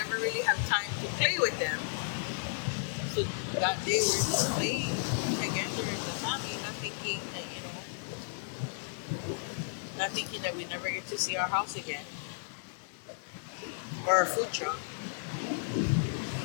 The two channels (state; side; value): silent; right; digital silence